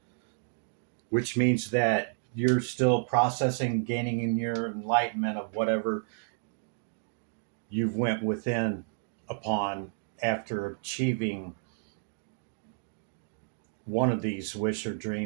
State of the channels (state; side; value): silent; left; digital silence